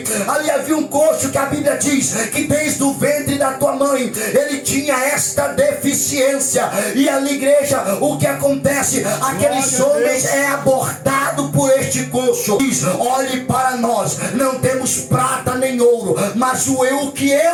havia um coxo que a Bíblia diz que desde o ventre da tua mãe ele tinha esta deficiência, e ali, igreja, o que acontece? Aqueles homens é abordado por este coxo. Diz: olhe para nós, não temos prata nem ouro, mas o que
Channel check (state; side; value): identical; both; correlation 1.00